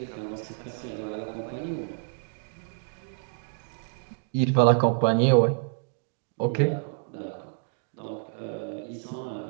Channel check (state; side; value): silent; left; digital silence